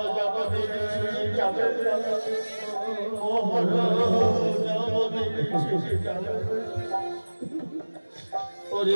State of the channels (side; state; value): both; inverted; correlation -1.00